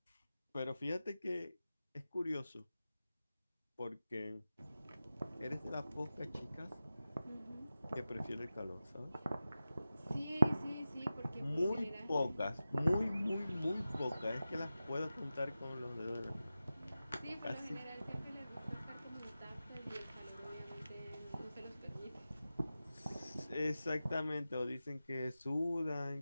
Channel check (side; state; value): both; inverted; correlation -0.94